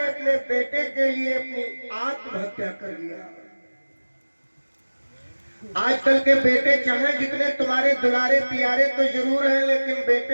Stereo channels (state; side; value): inverted; both; correlation -1.00